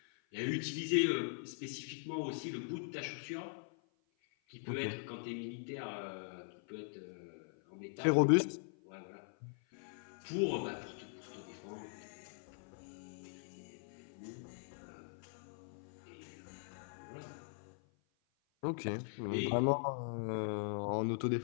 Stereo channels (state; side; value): silent; right; 50 dB below the other